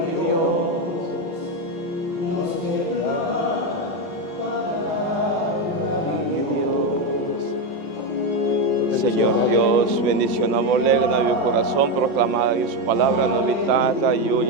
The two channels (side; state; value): left; late; 4.1 ms